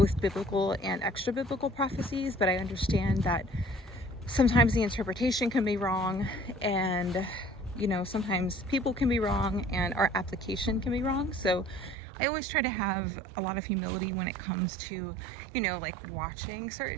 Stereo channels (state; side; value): drops out; left; at 12.0 s